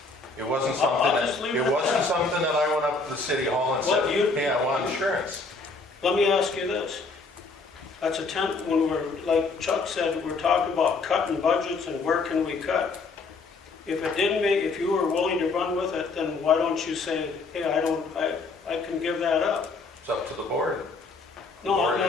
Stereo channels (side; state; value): right; quieter; 3.9 dB